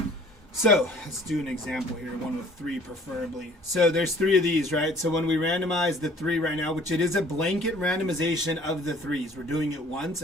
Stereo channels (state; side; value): normal; both; correlation 0.54